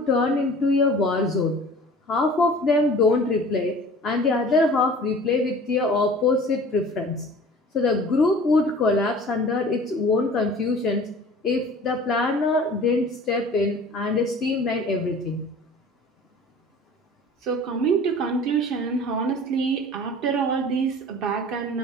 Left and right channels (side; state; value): both; normal; correlation 0.45